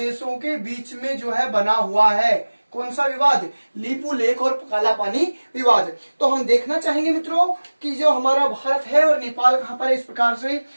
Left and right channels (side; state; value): both; inverted; correlation -1.00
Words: के बीच में जो है बना हुआ है। कौन सा विवाद? लिपुलेख और काला पानी विवाद। तो हम देखना चाहेंगे मित्रों कि जो हमारा भारत है और नेपाल कहां पर है। इस प्रकार से